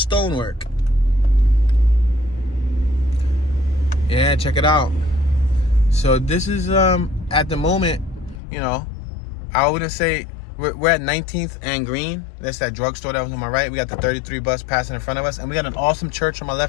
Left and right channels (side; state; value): right; drops out; at 8.4 s